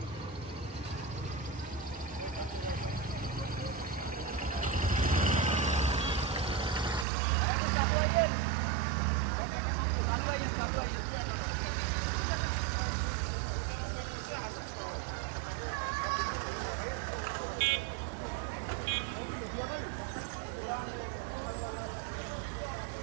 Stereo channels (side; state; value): left; drops out; at 7.1 s